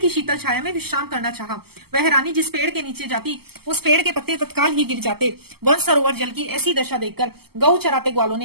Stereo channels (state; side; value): late; left; 0.96 ms